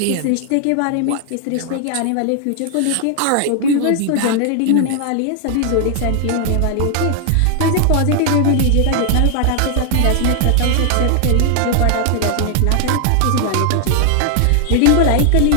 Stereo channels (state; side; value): different; both; correlation 0.00